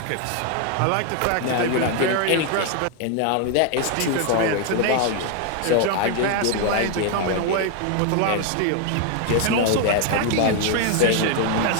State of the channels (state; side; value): different; both; correlation 0.00